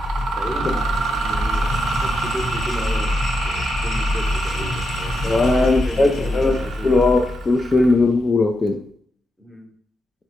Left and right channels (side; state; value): both; normal; correlation 0.84